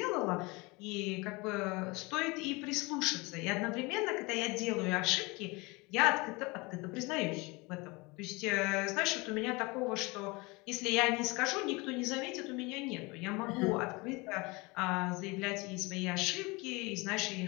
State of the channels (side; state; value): right; quieter; 25.5 dB